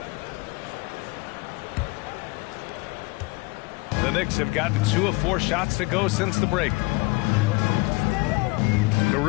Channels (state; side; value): quieter; right; 25.3 dB